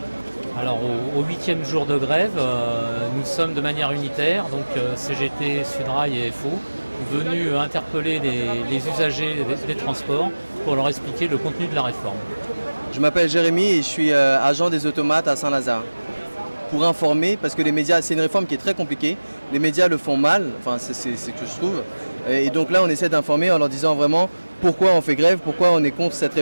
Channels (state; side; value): inverted; both; correlation -1.00